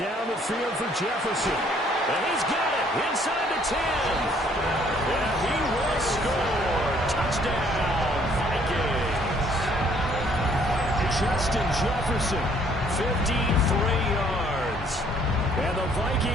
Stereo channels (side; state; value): both; normal; correlation 0.62